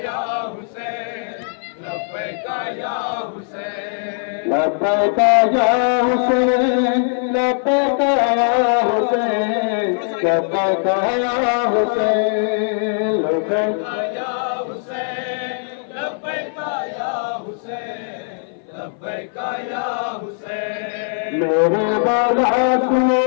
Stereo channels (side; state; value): right; silent; 58 dB below the other